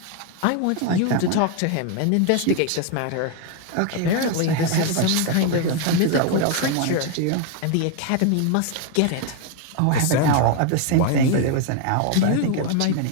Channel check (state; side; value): different; both; correlation 0.01